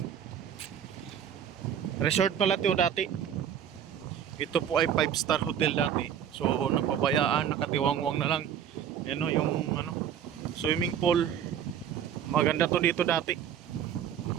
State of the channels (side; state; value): left; quieter; 9.1 dB